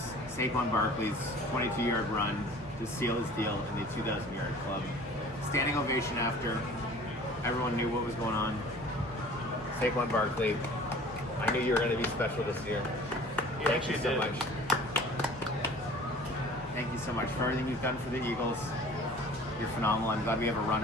Saquon Barkley's 22-yard run to seal his deal in the 2,000-yard club. Standing ovation after. Everyone knew what was going on. Saquon Barkley, I knew you were going to be special this year. Thank you so much. Thank you so much for everything you've done for the Eagles. You're phenomenal. I'm glad we have a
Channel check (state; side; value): normal; both; correlation 0.47